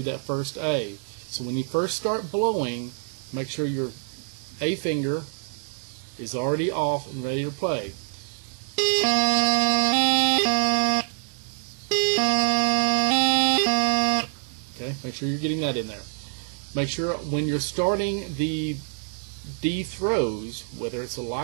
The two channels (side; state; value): left; silent; 58 dB below the other